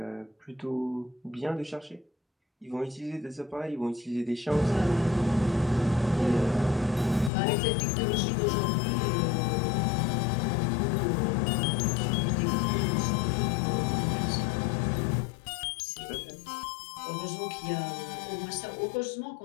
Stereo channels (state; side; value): drops out; right; at 7.3 s